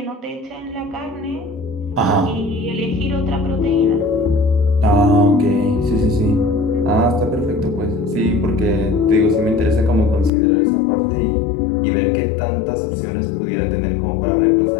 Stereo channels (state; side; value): drops out; right; at 10.3 s